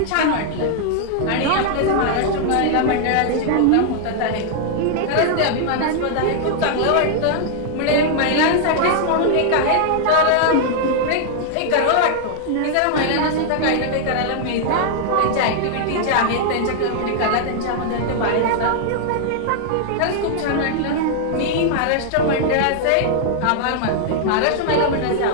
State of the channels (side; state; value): both; different; correlation -0.01